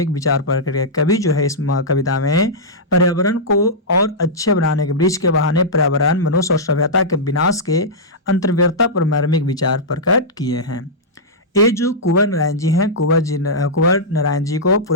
विचार प्रकट किया। कवि जो है इस कविता में पर्यावरण को और अच्छे बनाने के, वृक्ष के बहाने पर्यावरण, मनुष्य और सभ्यता के विनाश के अंतर्गतता पर मार्मिक विचार प्रकट किए हैं। ये जो कुंवर नारायण जी हैं, कुंवर नारायण जी को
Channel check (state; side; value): normal; both; correlation -0.11